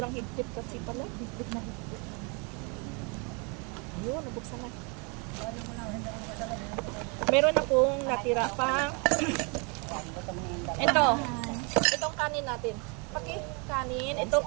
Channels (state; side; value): quieter; left; 33.5 dB